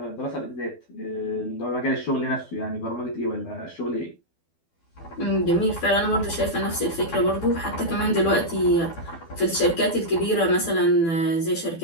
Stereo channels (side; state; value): right; late; 12 ms